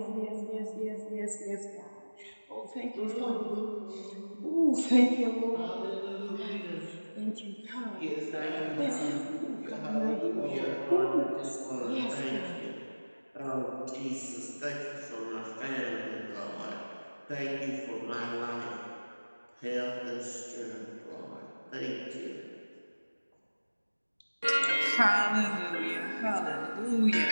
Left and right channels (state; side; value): inverted; both; correlation -1.00